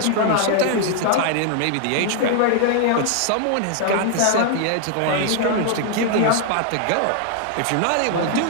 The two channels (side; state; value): both; different; correlation 0.00